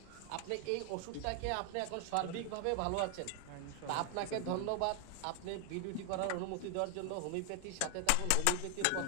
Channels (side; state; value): both; different; correlation 0.00